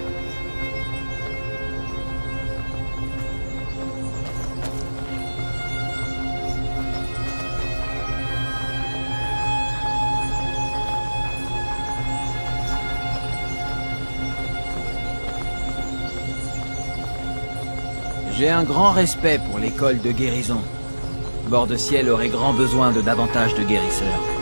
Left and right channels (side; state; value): both; inverted; correlation -1.00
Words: J'ai un grand respect pour l'école de guérison. Bord-de-Ciel aurait grand besoin de davantage de guérisseurs.